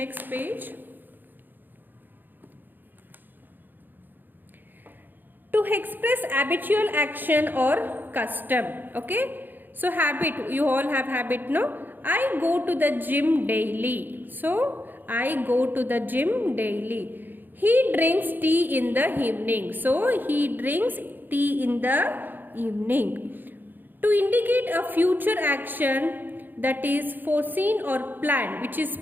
page. To express habitual action or custom. Okay. So habit, you all have habit, no? I go to the gym daily. So I go to the gym daily. He drinks tea in the evening. So he drinks tea in the evening. To indicate a future action that is foreseen or planned, which is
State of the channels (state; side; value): late; left; 0.090 ms